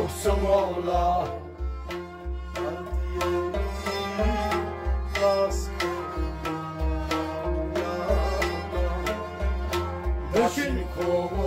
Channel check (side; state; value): both; identical; correlation 1.00